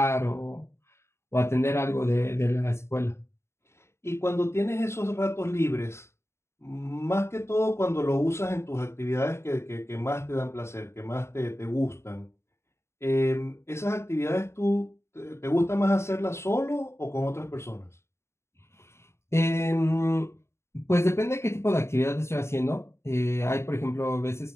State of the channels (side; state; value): right; late; 0.13 ms